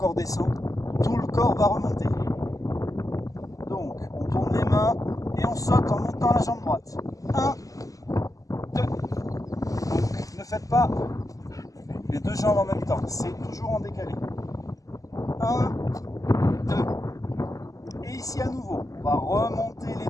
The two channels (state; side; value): late; right; 0.17 ms